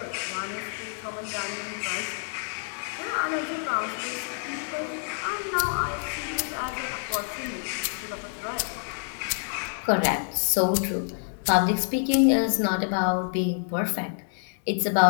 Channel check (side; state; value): right; silent; 60 dB below the other